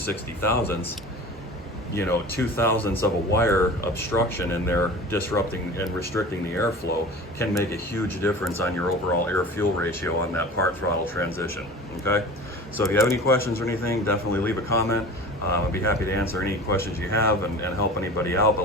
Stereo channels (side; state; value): both; normal; correlation 0.37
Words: thousandths, you know, 2 thousandths of a wire obstruction in there disrupting and restricting the airflow can make a huge difference on your overall air-fuel ratio on that part throttle transition, okay? So if you have any questions or anything, definitely leave a comment. I'd be happy to answer any questions you have and help anybody out. But